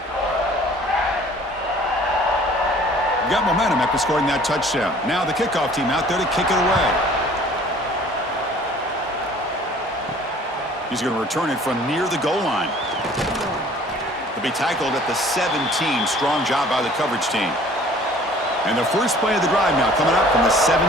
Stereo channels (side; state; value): both; normal; correlation 0.52